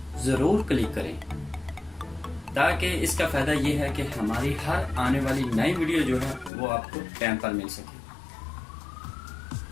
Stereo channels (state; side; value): drops out; right; at 6.5 s